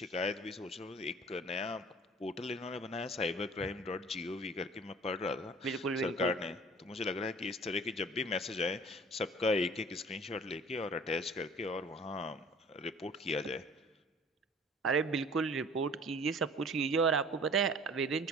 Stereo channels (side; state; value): both; normal; correlation 0.48